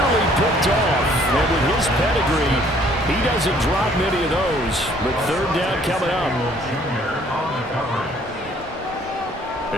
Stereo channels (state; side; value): normal; both; correlation 0.60